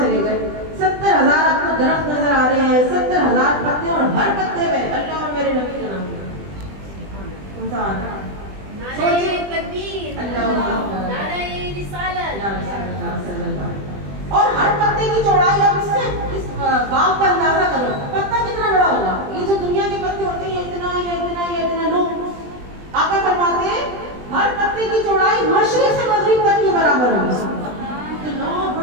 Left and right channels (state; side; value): late; left; 20 ms